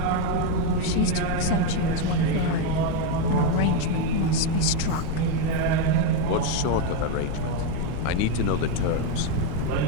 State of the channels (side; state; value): both; different; correlation 0.03